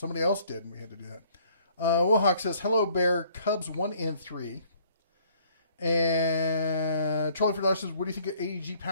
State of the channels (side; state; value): both; inverted; correlation -0.60